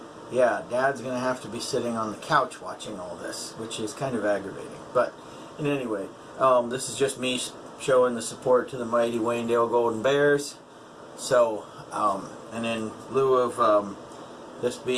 yeah, Dad's going to have to be sitting on the couch watching all this, which is kind of aggravating. But in any way, this is just me showing the support to the mighty Waynedale Golden Bears. So, and in lieu of this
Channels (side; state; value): both; identical; correlation 1.00